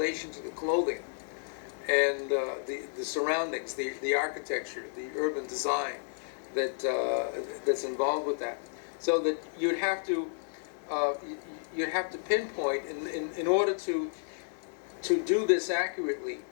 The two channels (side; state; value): right; silent; digital silence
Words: to the clothing and the surroundings, the architecture, the urban design that's involved with that. So that you'd have to pinpoint in order to do this accurately,